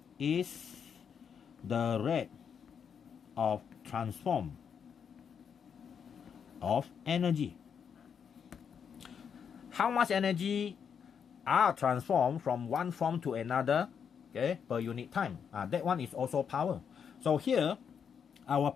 is the rate of transform of energy. How much energy are transformed from one form to another, okay, per unit time. That one is also power. So here, our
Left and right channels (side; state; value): right; quieter; 7.2 dB